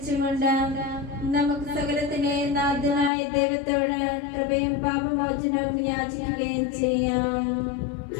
നമുക്ക് സകലത്തിന്റെ നാഥനായ ദൈവത്തോട് കൃപയും പാപമോചനവും യാചിക്കുകയും ചെയ്യാം.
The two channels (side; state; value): right; drops out; at 3.1 s